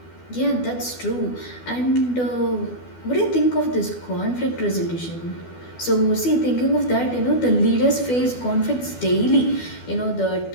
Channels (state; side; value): late; right; 12 ms